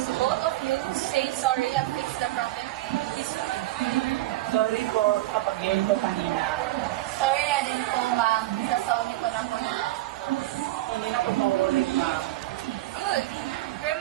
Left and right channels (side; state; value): left; quieter; 16.9 dB